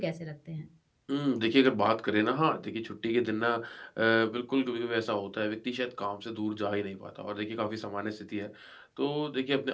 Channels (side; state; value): both; identical; correlation 1.00